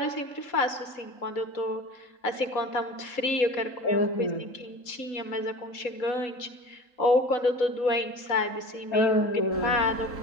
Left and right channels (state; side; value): late; right; 3.8 ms